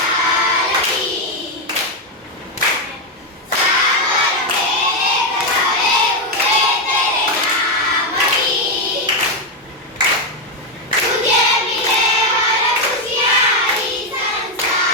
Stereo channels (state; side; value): normal; both; correlation 0.04